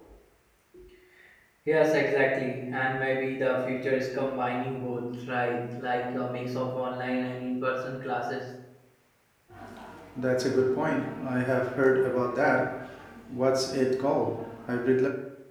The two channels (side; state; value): both; identical; correlation 1.00